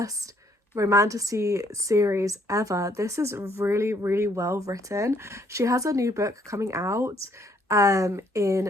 romantasy series ever. This is really, really well written. She has a new book coming out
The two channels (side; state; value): both; normal; correlation 0.67